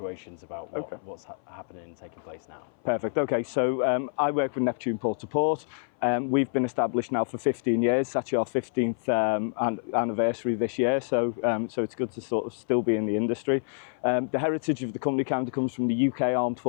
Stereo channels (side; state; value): right; silent; 57 dB below the other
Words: about what's happening and taking place now. Perfect. Okay, so I work with Neptune Port to Port. We've been established now for 15 years. It's actually our 15th anniversary this year, so it's good to sort of still be in the industry. The heritage of the company kind of comes from the UK Armed